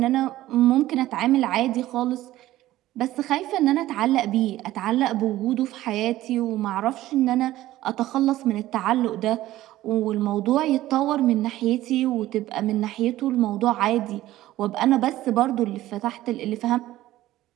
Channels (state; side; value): quieter; left; 15.2 dB